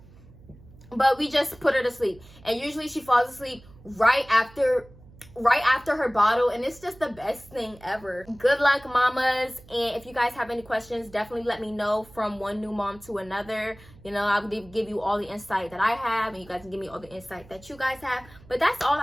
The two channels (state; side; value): noise; right; hum, 23 dB below the sound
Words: But we just put her to sleep. And usually she falls asleep right after her bottle, and it's just the best thing ever. Good luck, mamas. And if you guys have any questions, definitely let me know. From one new mom to another, you know, I'll give you all the insight that I have, and you guys can give me all the insight that you guys have. But that's all